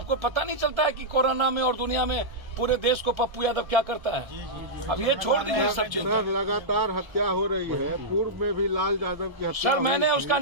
पता नहीं चलता है कि कोरोना में और दुनिया में पूरे देश को पप्पू यादव क्या करता है? अब ये छोड़ दीजिए सब चिंता। लगातार हत्या हो रही है, पूर्व में भी लाल यादव की हत्या। सर मैंने उसका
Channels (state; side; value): late; left; 1.5 ms